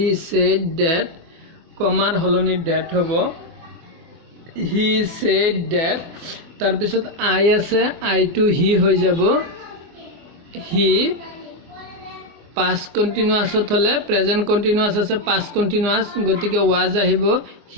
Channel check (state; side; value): late; left; 24 ms